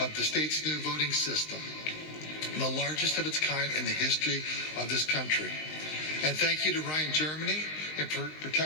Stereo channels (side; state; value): right; late; 19 ms